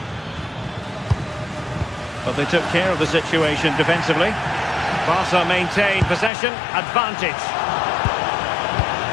But they took care of the situation defensively. Barca maintain possession, advantage.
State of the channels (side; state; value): right; drops out; at 6.3 s